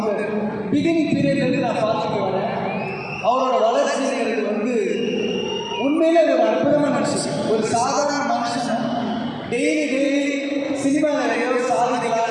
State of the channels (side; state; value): both; identical; correlation 1.00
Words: பிகினிங் பீரியட்லேருந்து நான் பார்த்துட்டு வரேன். அவரோட வளர்ச்சிங்கிறது வந்து உண்மையிலே ஒரு அற்புதமான விஷயம். ஒரு சாதாரண மனுஷன் டெய்லி சினிமாவில் ஏதோ